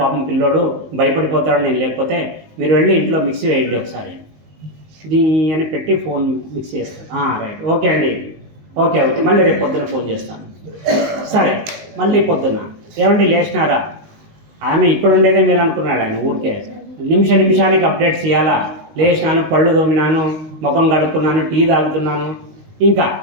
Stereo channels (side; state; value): left; late; 19 ms